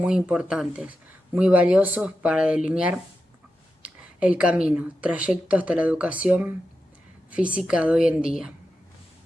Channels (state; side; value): normal; both; correlation 0.90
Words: importantes, muy valiosos para delinear el camino, trayecto hasta la educación física de hoy en día.